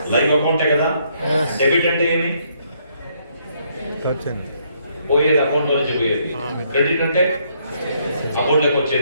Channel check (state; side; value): inverted; both; correlation -0.71